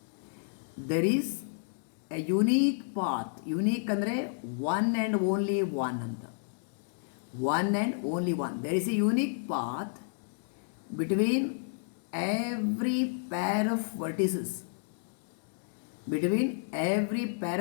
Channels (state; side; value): silent; right; digital silence